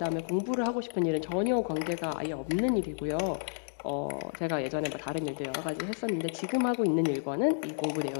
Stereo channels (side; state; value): right; silent; digital silence